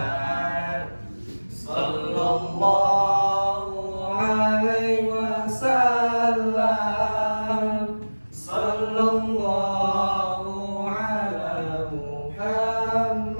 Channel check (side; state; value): both; inverted; correlation -1.00